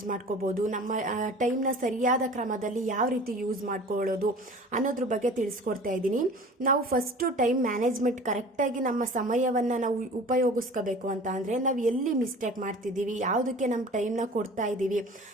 ಮಾಡ್ಕೋಬೋದು, ನಮ್ಮ ಟೈಮ್ನ ಸರಿಯಾದ ಕ್ರಮದಲ್ಲಿ ಯಾವ ರೀತಿ ಯೂಸ್ ಮಾಡ್ಕೊಳ್ಳೋದು ಅನ್ನೋದ್ರ ಬಗ್ಗೆ ತಿಳಿಸ್ಕೊಡ್ತಾ ಇದ್ದೀನಿ. ನಾವು ಫಸ್ಟ್ ಟೈಮ್ ಮ್ಯಾನೇಜ್ಮೆಂಟ್ ಕರೆಕ್ಟಾಗಿ ನಮ್ಮ ಸಮಯವನ್ನು ನಾವು ಉಪಯೋಗಿಸ್ಕೋಬೇಕು ಅಂತ ಅಂದರೆ ನಾವು ಎಲ್ಲಿ ಮಿಸ್ಟೇಕ್ ಮಾಡ್ತಿದ್ದೀವಿ, ಯಾವುದಕ್ಕೆ ನಮ್ಮ ಟೈಮ್ನ ಕೊಡ್ತಾ ಇದ್ದೀವಿ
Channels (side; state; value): both; normal; correlation 0.42